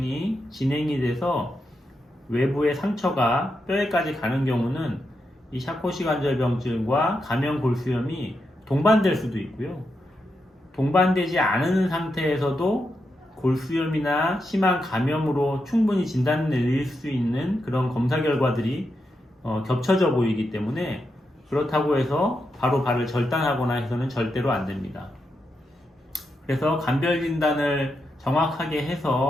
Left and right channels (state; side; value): normal; both; correlation 0.85